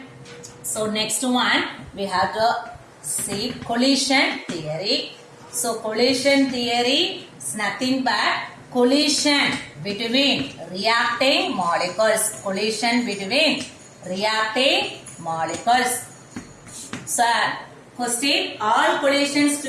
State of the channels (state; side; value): identical; both; correlation 1.00